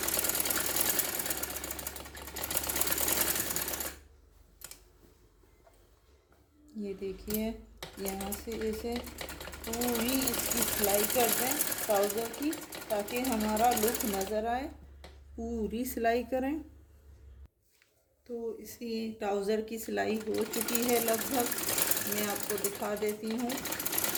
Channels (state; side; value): identical; both; correlation 1.00